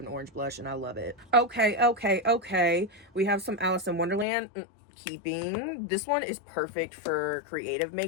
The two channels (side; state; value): right; drops out; at 4.2 s